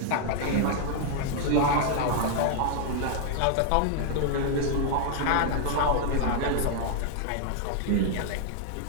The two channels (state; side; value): different; both; correlation 0.00